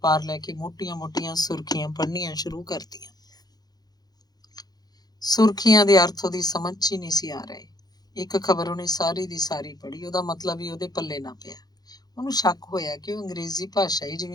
ਲੈ ਕੇ ਮੋਟੀਆਂ-ਮੋਟੀਆਂ ਸੁਰਖੀਆਂ ਪੜ੍ਹਨੀਆਂ ਸ਼ੁਰੂ ਕਰਤੀਆਂ। ਸੁਰਖੀਆਂ ਦੇ ਅਰਥ ਉਹਦੀ ਸਮਝ 'ਚ ਹੀ ਨਹੀਂ ਸੀ ਆ ਰਹੇ। ਇੱਕ ਖਬਰ ਉਹਨੇ ਸਾਰੀ ਦੀ ਸਾਰੀ ਪੜ੍ਹੀ, ਉਹਦਾ ਮਤਲਬ ਹੀ ਉਹਦੇ ਪੱਲੇ ਨਾ ਪਿਆ। ਉਹਨੂੰ ਸ਼ੱਕ ਹੋਇਆ ਕਿ ਉਹ ਅੰਗਰੇਜ਼ੀ ਭਾਸ਼ਾ ਹੀ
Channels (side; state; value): right; late; 0.19 ms